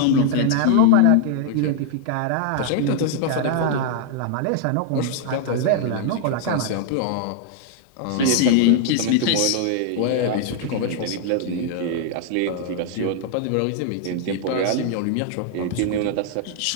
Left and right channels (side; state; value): both; different; correlation 0.00